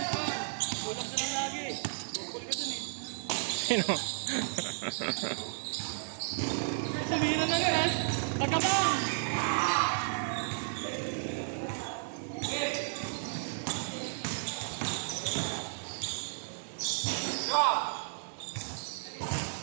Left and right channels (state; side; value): silent; left; digital silence